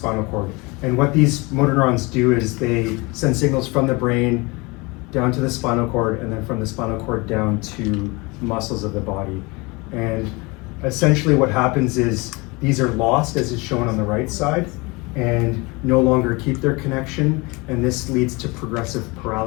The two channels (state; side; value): quieter; right; 26.0 dB